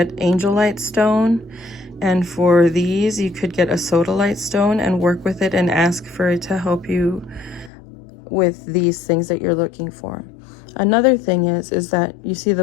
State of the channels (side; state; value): right; drops out; at 7.7 s